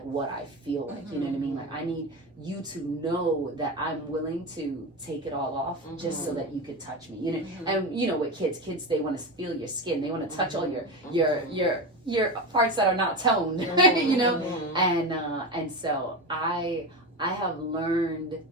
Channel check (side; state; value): both; normal; correlation 0.21